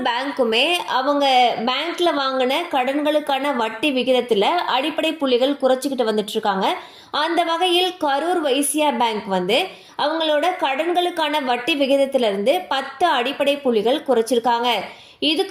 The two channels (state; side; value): identical; both; correlation 1.00